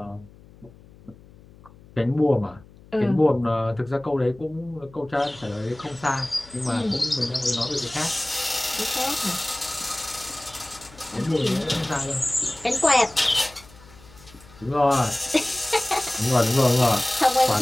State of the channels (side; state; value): left; noise; hum, 23 dB below the sound